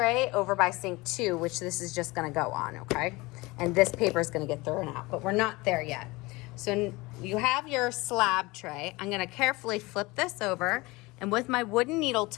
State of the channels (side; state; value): right; quieter; 22.7 dB